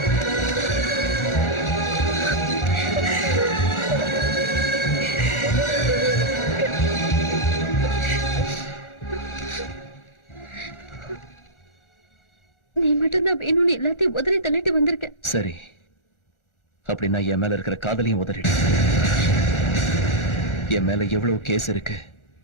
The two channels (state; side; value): late; right; 1.4 ms